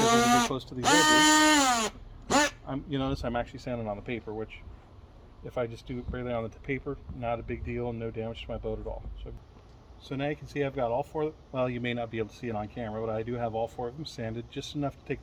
when you get close to these edges, you notice I'm actually sanding on the paper, which if I just do it barely on the paper, not a big deal, no damage to my boat at all. So now you can see I've got all 4, well, you may not be able to see it on camera, but I do have all 4 of them sanded, just enough to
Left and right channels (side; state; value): both; identical; correlation 1.00